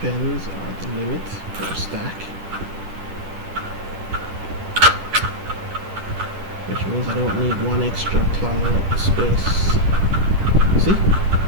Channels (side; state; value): left; late; 10 ms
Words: are the limit for a stack. Which means I don't need 1 extra clogging up the space. See?